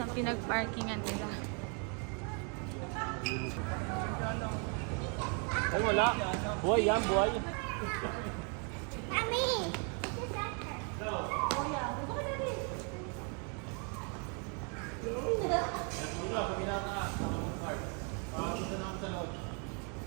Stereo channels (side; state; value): left; quieter; 37.0 dB